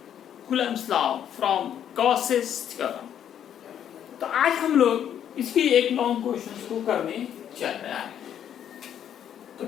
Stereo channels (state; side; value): quieter; right; 9.7 dB